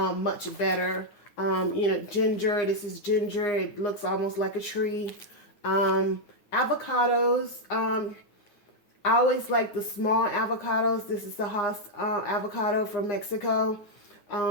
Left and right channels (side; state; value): right; late; 9.8 ms